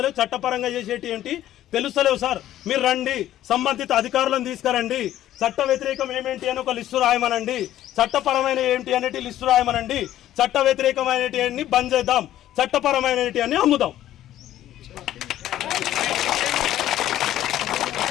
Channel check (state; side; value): quieter; right; 12.9 dB